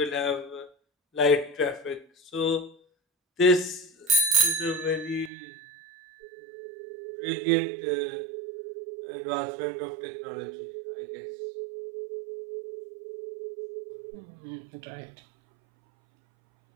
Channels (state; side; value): drops out; left; at 5.3 s